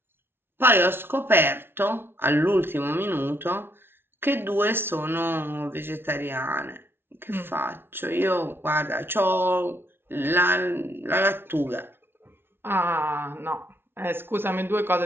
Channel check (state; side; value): late; left; 0.11 ms